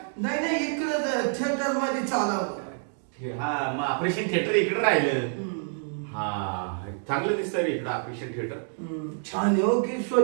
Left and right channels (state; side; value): silent; left; 56 dB below the other